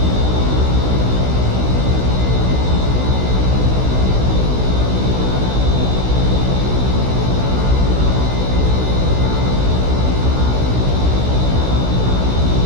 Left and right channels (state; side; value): late; left; 16 ms